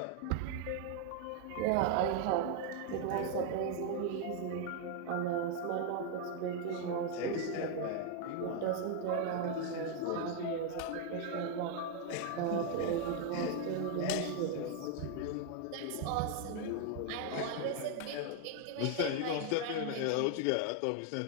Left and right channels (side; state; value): both; different; correlation 0.00